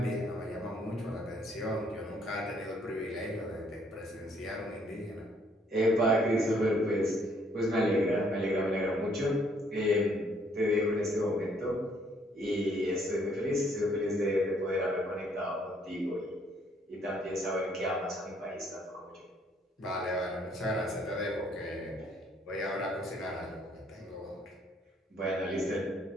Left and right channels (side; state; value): both; normal; correlation 0.66